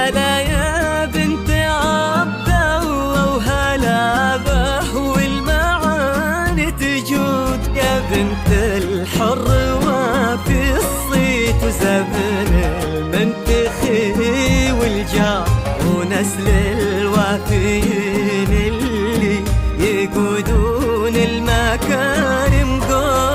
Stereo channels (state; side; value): identical; both; correlation 1.00